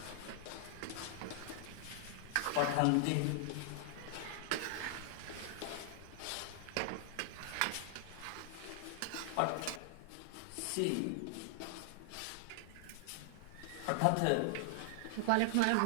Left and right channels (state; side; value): different; both; correlation 0.00